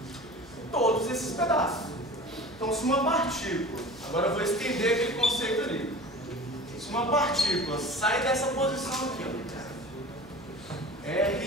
todos esses pedaços. Então, se uma partícula, agora eu vou estender aquele conceito ali. Se uma partícula sai dessa posição aqui, ó,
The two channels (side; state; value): left; noise; hum, 23 dB below the sound